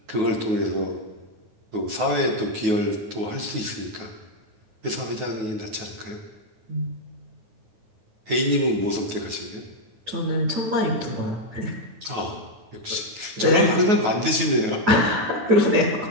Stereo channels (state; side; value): late; left; 9.4 ms